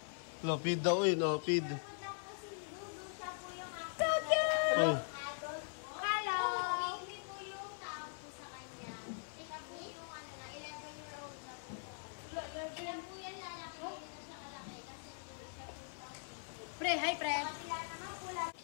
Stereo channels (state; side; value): silent; right; 50 dB below the other